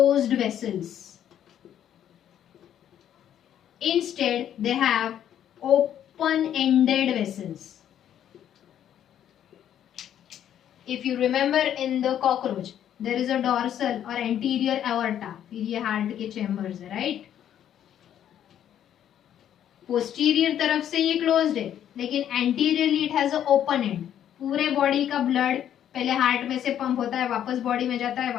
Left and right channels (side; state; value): right; quieter; 10.3 dB